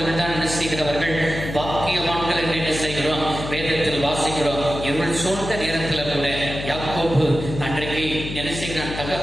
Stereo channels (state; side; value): noise; left; hum, 8 dB below the sound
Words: தான் என்ன செய்கிறவர்கள், பாக்கியவான்கள் என்று என்ன செய்கிறோம், வேதத்தில் வாசிக்கிறோம். இருள் சூழ்ந்த நேரத்தில் கூட யாக்கோபு அன்றைக்கு